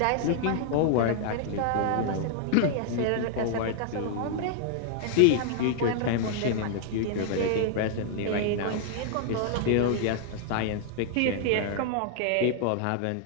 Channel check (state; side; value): different; both; correlation 0.00